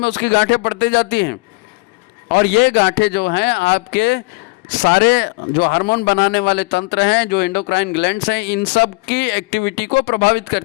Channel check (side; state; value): right; quieter; 27.5 dB